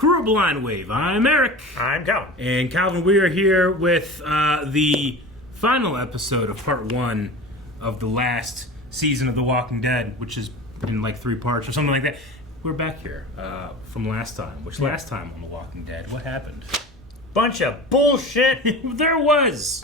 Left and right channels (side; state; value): both; normal; correlation 0.34